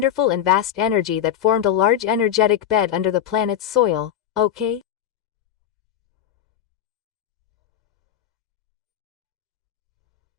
and vast energy that formed a large energetic bed under the planet's soil, okay?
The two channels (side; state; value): right; quieter; 10.2 dB